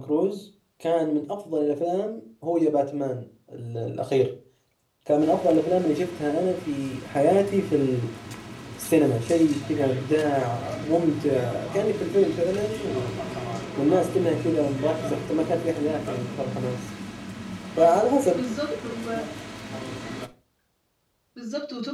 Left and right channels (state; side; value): identical; both; correlation 1.00